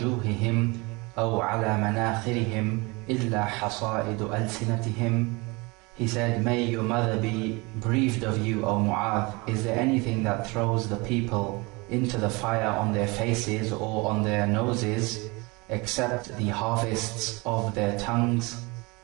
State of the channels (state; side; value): quieter; left; 26.0 dB